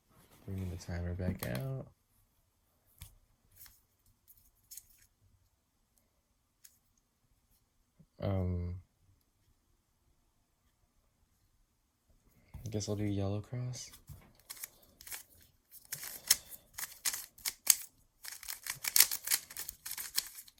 Bringing the timer back out. I guess I'll do yellow cross.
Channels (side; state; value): both; identical; correlation 1.00